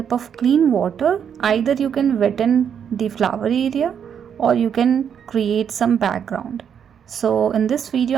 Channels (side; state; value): left; quieter; 8.0 dB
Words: of clean water, either you can wetten the flower area or you can create some background. So in this video